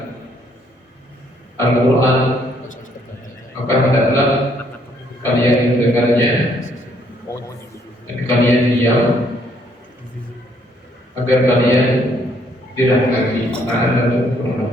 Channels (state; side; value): normal; both; correlation 0.68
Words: Al-Quran, maka hendaklah kalian mendengarnya dan kalian diam, agar kalian dirahmati.